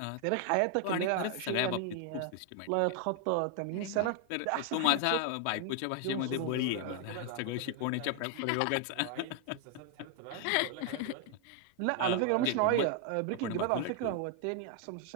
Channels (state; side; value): different; both; correlation 0.00